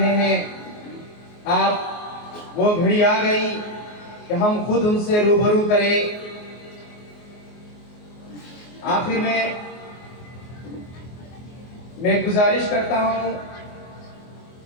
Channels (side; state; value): right; late; 24 ms